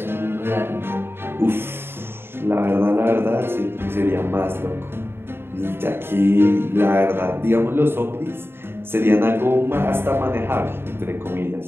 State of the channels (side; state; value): left; late; 0.11 ms